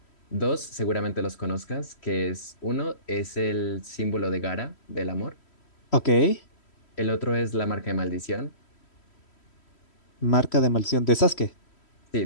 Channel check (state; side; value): late; right; 3.1 ms